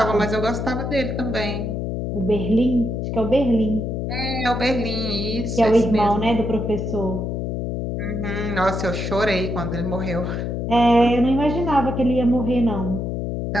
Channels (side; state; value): left; noise; hum, 2 dB below the sound